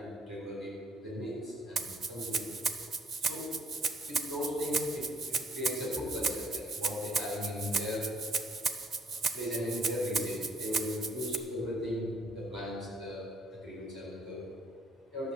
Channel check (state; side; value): normal; both; correlation 0.63